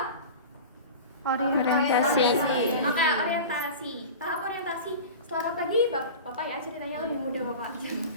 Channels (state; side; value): inverted; both; correlation -0.32